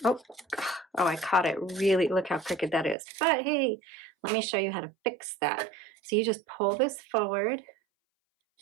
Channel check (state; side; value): drops out; left; at 3.0 s